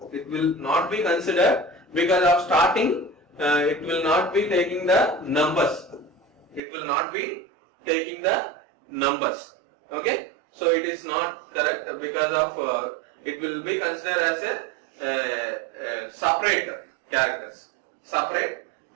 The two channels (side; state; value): left; drops out; at 6.6 s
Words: It will not be considered because of starting. It will not be taking the numbers. It will not be taking the numbers. Okay. So it is not correct because of it will be considered as a separate characters, separate